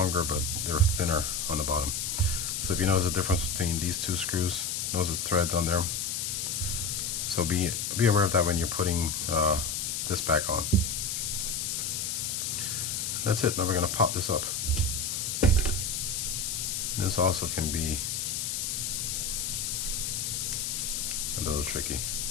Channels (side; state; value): left; noise; hiss, 1 dB below the sound